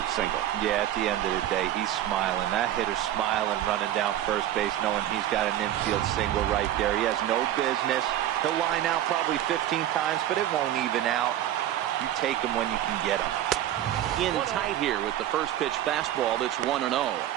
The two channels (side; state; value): left; quieter; 12.3 dB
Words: single. Yeah, at the end of the day, he's smiling. That hitter's smiling, running down first base, knowing he's got an infield single right there. He has no business. He'll line out probably 15 times, but it won't even out. You take him when you can get him. In tight here with the first pitch fastball. That's 1-0.